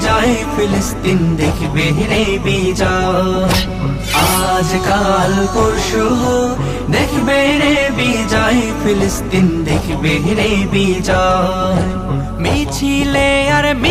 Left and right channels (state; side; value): identical; both; correlation 1.00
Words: ফিলিস্তিন দেখবে রে বিজয়। আজ কাল পরশু হোক, দেখবে রে বিজয়, ফিলিস্তিন দেখবে রে বিজয়। মিছিলে আর